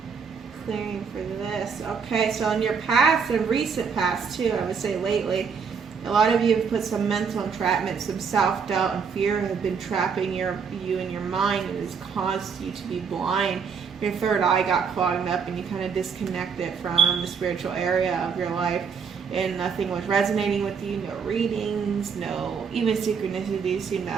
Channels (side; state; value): left; quieter; 6.1 dB